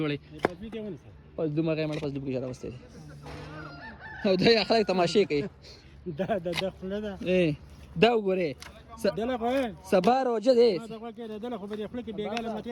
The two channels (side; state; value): both; identical; correlation 1.00